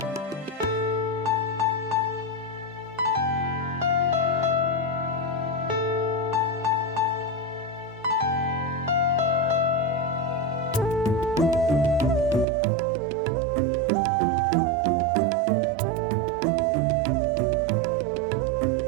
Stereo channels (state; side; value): drops out; left; at 12.5 s